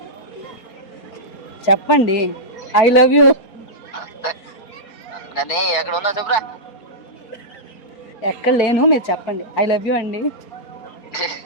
చెప్పండి. I love you. కానీ ఎక్కడ ఉన్నావు చెప్పురా. ఎక్కడ లేను, మీరు చెప్పండి. ఐ లవ్ యూ అండి.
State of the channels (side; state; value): right; late; 4.3 ms